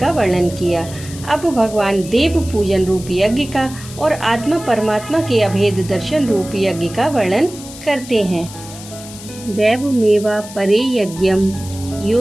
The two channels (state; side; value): noise; left; hiss, 15 dB below the sound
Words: वर्णन किया। अब भगवान देव पूजन रूप यज्ञ का और आत्मा परमात्मा के अभेद दर्शन रूप यज्ञ का वर्णन करते हैं। दैवमेवा परे यज्ञम